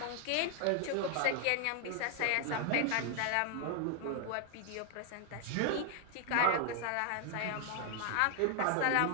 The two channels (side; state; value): both; different; correlation 0.00